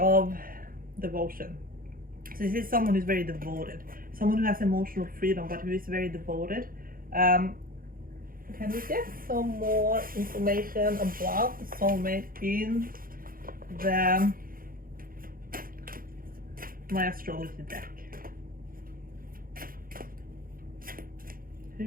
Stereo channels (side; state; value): left; late; 0.42 ms